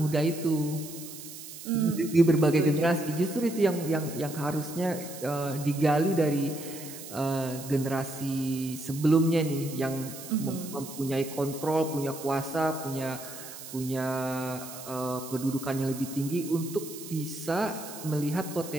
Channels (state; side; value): noise; right; hiss, 13 dB below the sound